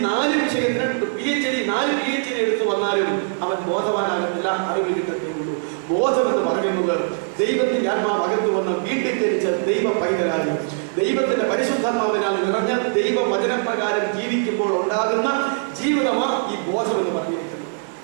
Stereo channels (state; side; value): silent; left; digital silence